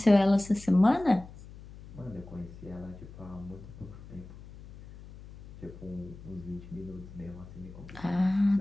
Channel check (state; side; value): noise; left; hum, 17 dB below the sound